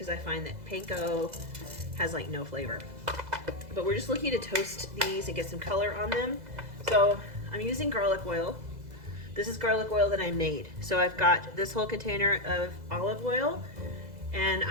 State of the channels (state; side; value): late; left; 2.0 ms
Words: I find that panko has like no flavor. But we're just looking to toast these and get some color on them. So I'm using garlic oil. This is garlic oil that I made. So I've got this whole container of olive oil, and